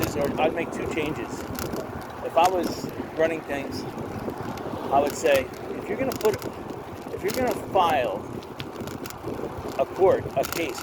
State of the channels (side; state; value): both; identical; correlation 1.00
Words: or I'd make two changes. If I was running things, I would say, if you're going to file a case